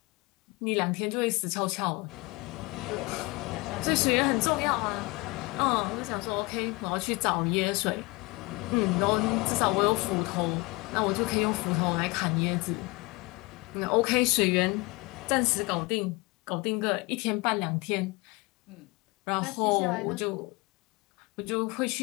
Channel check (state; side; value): quieter; right; 24.6 dB